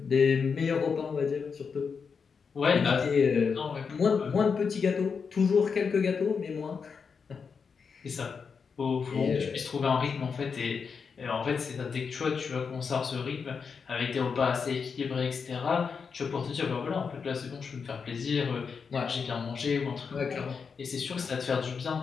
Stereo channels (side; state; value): right; quieter; 5.8 dB